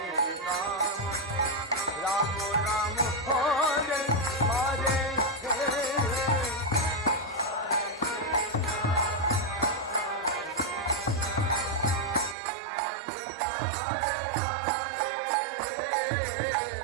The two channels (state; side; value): drops out; left; at 12.4 s